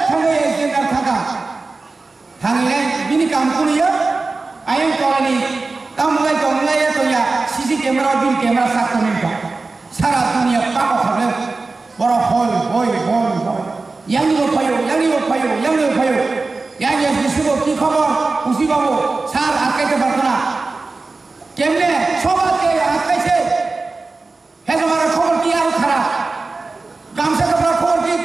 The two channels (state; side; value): quieter; left; 3.7 dB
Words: খাবে এজেন্ডা থাকা থাংলে বিনি কাম কুনিয়া আইন করানি কামলাই কমলাই তোয়া সিসি ক্যামেরা বিল ক্যামেরা সাকনিকা সারা দুনিয়া পাকা খাবে বড় হল হই ইয়াংনিও ফায়ো ইয়াংয়ে বিশুবো কি খবর খুশি বাবু স্যার আটকাইতে পারতো না কেমনে সবাইকে আটকাইছে হে তোমার খবর কি আর খারাপ গামছা কাপড় খবর কি